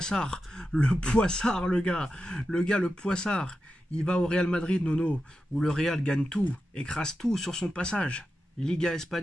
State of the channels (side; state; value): both; normal; correlation 0.90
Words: le poissard. Il va au Real Madrid Nono, où le Real gagne tout, écrase tout sur son passage. Liga